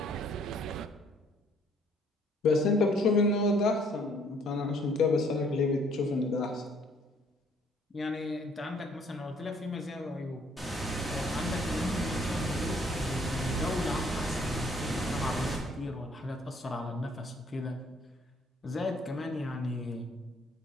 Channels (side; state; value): both; normal; correlation 0.62